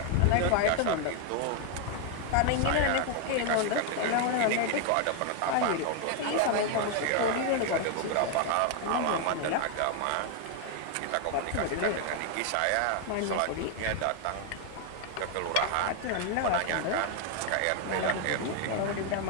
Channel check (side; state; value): both; different; correlation 0.01